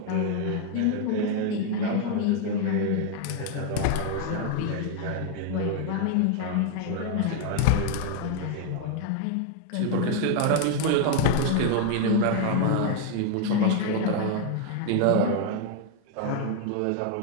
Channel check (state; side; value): different; both; correlation 0.00